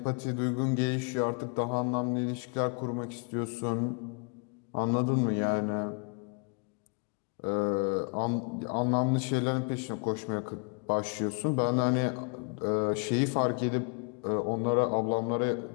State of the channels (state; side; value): quieter; right; 36.7 dB